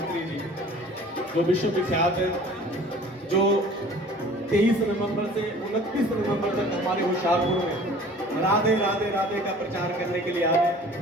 जी जो विश्व विख्यात है जो 23 नवंबर से 29 नवंबर तक हमारे होशियारपुर में राधे राधे राधे का प्रचार करने के लिए आए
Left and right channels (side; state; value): both; normal; correlation 0.47